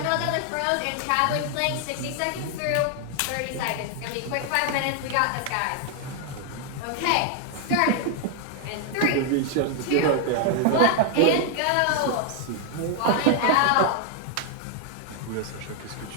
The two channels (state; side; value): different; both; correlation 0.00